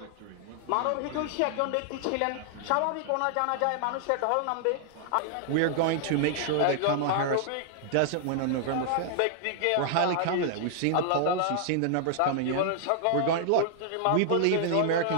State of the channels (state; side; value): different; both; correlation -0.01